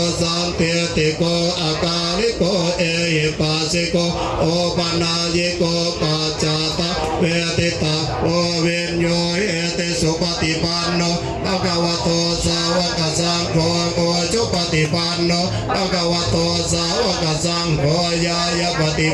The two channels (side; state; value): both; identical; correlation 1.00